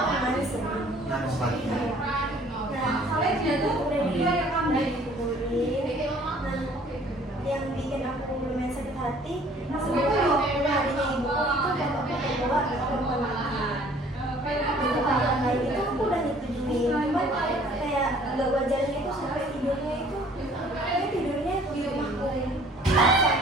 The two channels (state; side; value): normal; both; correlation 0.55